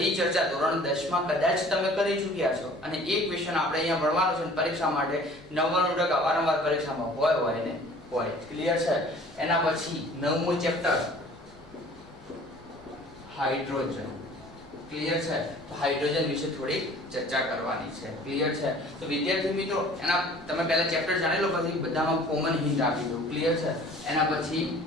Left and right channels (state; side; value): normal; both; correlation 0.49